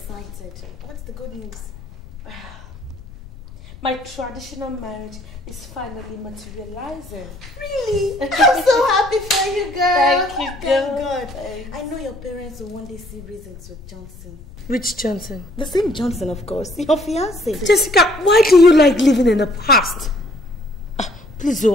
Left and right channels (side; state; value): left; noise; rumble, 18 dB below the sound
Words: What's the good news? My traditional marriage is finally materializing. Really? I'm so happy for you, girl. Thank you, girl. Thank God. I know your parents will one day see reasons with Johnson. Which Johnson? The same Johnson, of course. Your fiancé. Jessica, why do you like living in the past? Please,